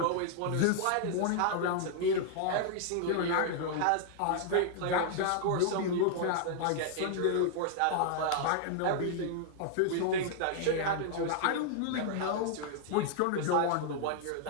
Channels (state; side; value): different; both; correlation -0.01